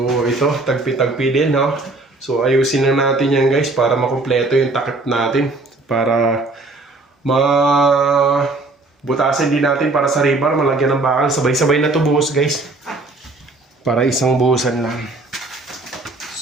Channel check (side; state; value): left; quieter; 3.2 dB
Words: ito. Tagpi-tagpi din no. So ayusin na natin yan guys para makumpleto yung takip natin. Para butasin din natin para sa rebar. Malagyan ng bakal. Sabay-sabay na to buhos guys. Para isang buhusan lang.